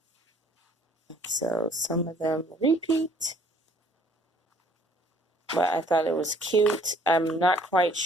So some of them repeat, but I thought it was cute. I'm not quite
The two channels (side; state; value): both; normal; correlation 0.59